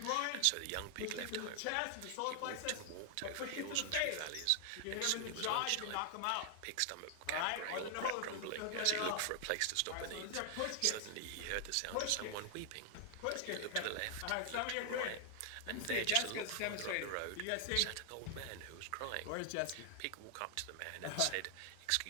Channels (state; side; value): different; both; correlation 0.00